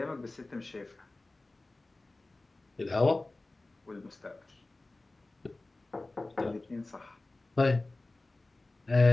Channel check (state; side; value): quieter; right; 3.0 dB